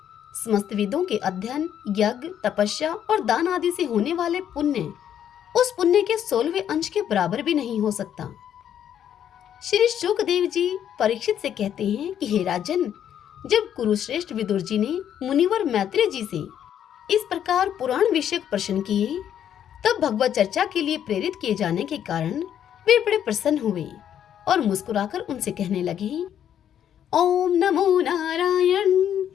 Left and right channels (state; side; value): quieter; right; 9.7 dB